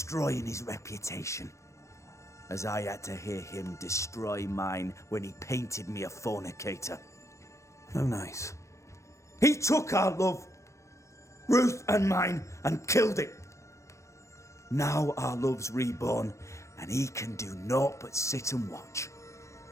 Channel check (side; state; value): right; late; 0.14 ms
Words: his reputation. As I had to hear him destroy mine when he painted me a fornicator. How nice. He took our love, Ruth and mine, and killed it. Now our love's reborn, and he can do naught but sit and watch.